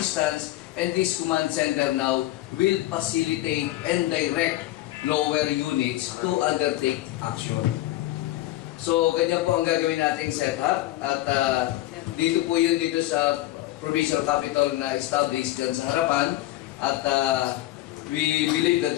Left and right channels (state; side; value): quieter; right; 16.0 dB